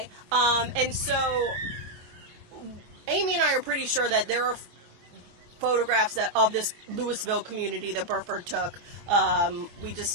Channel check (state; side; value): late; left; 23 ms